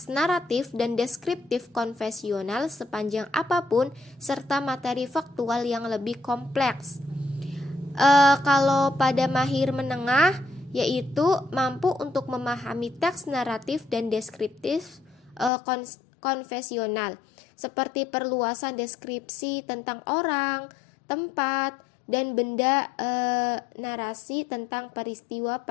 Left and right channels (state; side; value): drops out; right; at 15.5 s